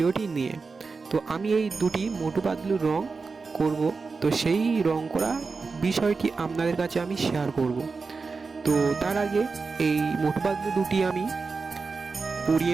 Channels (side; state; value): left; quieter; 4.5 dB